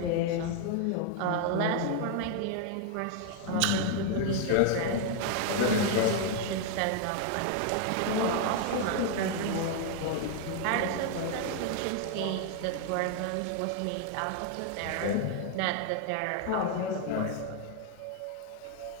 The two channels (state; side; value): different; both; correlation 0.00